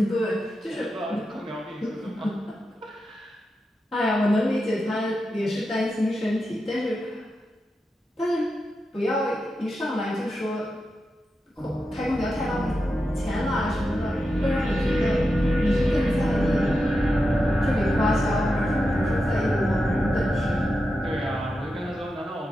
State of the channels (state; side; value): normal; both; correlation 0.89